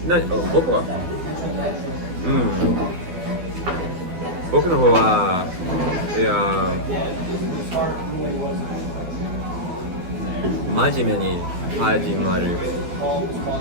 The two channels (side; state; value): left; late; 12 ms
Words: 僕は僕の方はいや真面目に始まる